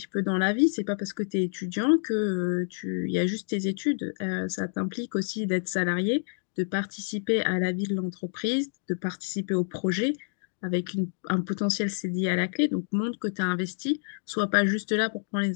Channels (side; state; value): right; silent; digital silence